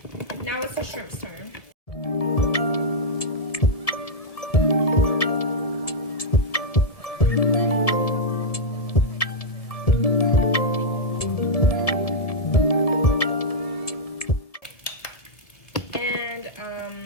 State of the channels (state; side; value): late; right; 1.7 ms